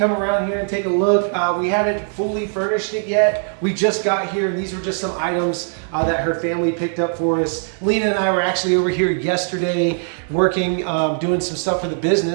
around here and take a look, we haven't fully furnished it yet. We just got here, and these were just some items that her family picked up for us. Lina and I were actually over here yesterday working, doing some stuff for the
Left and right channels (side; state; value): left; silent; 61 dB below the other